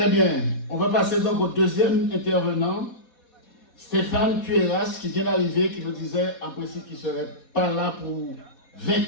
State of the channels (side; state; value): right; late; 4.2 ms